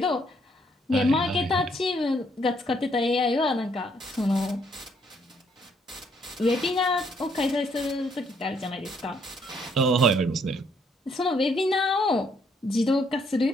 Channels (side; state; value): both; normal; correlation 0.69